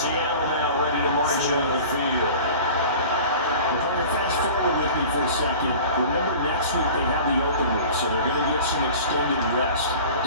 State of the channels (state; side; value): inverted; both; correlation -0.41